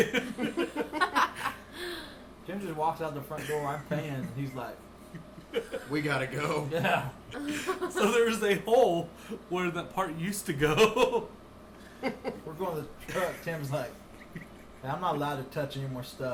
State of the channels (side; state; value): both; identical; correlation 1.00